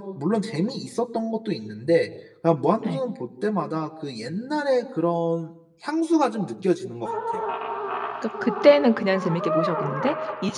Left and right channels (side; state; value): both; identical; correlation 1.00